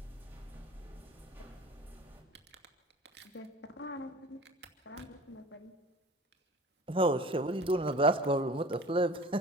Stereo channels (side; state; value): both; normal; correlation 0.41